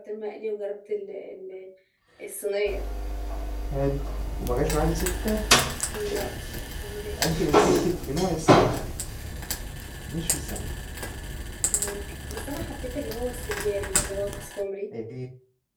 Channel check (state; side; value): identical; both; correlation 1.00